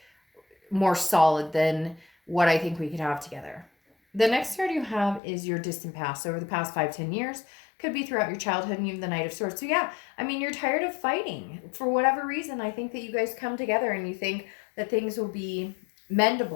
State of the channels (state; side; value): drops out; right; at 5.2 s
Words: more solid than what I think we could have together. The next card you have is your distant past. So over the past 5-10 years, could be throughout your childhood, and you have the Knight of Swords. So yeah, I mean, you're tired of fighting. For whatever reason, I think that you guys come together and you think that things will be